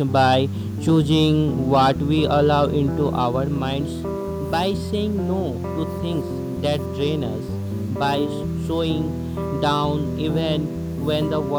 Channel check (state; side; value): identical; both; correlation 1.00